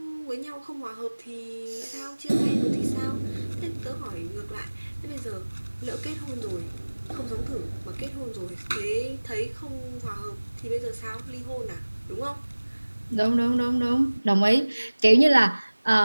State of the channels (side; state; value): both; inverted; correlation -1.00